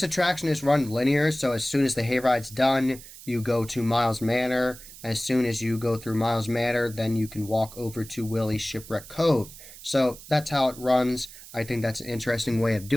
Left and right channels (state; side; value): noise; right; hiss, 17 dB below the sound